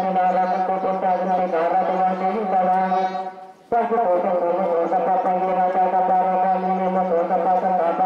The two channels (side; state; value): both; identical; correlation 1.00